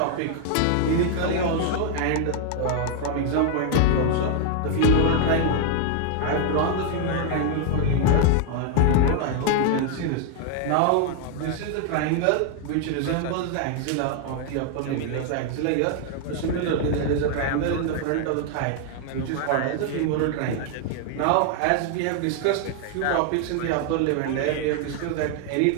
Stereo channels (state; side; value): different; both; correlation 0.00